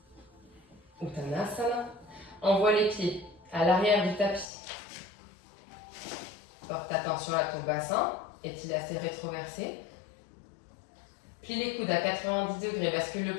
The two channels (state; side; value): drops out; right; at 4.5 s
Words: Uttanasana. Envoie les pieds à l'arrière du tapis. Porte attention à ton bassin. Est-il assez rétroversé? Plie les coudes à 90 degrés. Bascule le